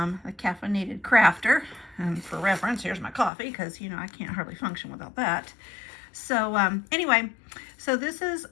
Caffeinated Crafter. And for reference, here's my coffee because you know I can't hardly function without that. So anyway, so this is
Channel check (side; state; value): right; drops out; at 3.3 s